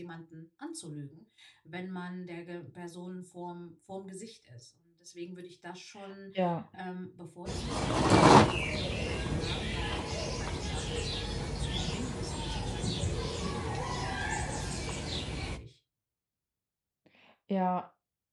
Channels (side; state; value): both; identical; correlation 1.00